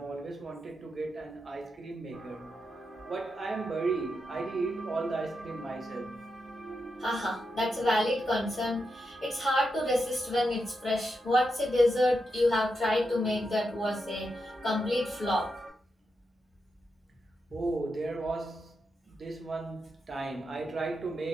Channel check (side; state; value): both; normal; correlation 0.86